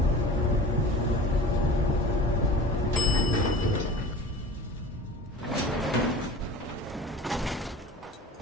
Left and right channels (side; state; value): both; normal; correlation 0.39